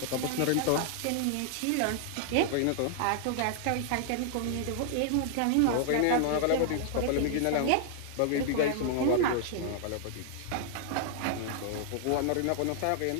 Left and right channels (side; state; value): both; different; correlation -0.01